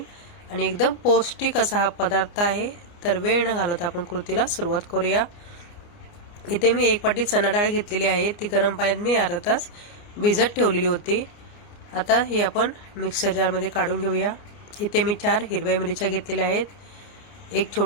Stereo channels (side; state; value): right; late; 29 ms